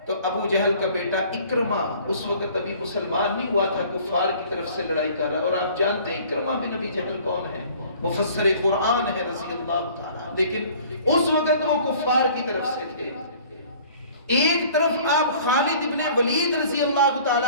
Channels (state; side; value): inverted; both; correlation -0.51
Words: تو ابو جہل کا بیٹا اکرمہ اس وقت ابھی مسلمان نہیں ہوا تھا، کفار کی طرف سے لڑائی کر رہا، اور آپ جانتے ہیں اکرمہ بن ابی جہل کون ہے؟ مفسر قرآن ہے رضی اللہ تعالیٰ، لیکن اس وقت وہ کفار کی طرف سے تھے۔ ایک طرف آپ خالد بن ولید رضی اللہ